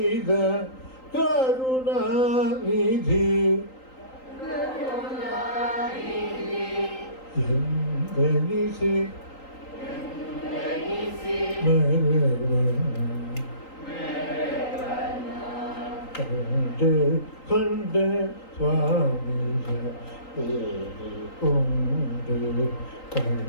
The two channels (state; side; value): late; right; 3.8 ms